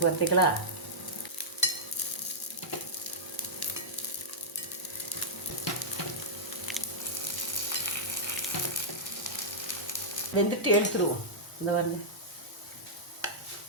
பார்த்தீங்களா? வெந்துட்டு எடுத்துருவோம். இந்த வந்து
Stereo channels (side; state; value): both; normal; correlation -0.11